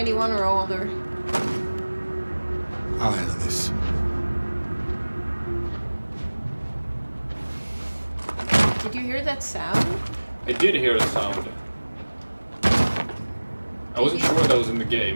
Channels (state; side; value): inverted; both; correlation -1.00